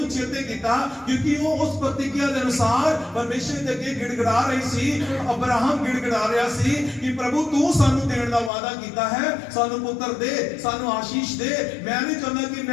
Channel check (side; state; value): right; drops out; at 8.5 s